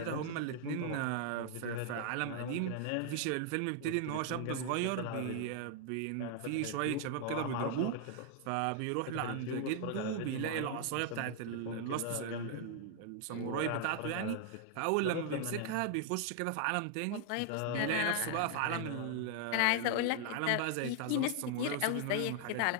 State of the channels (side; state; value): both; different; correlation 0.00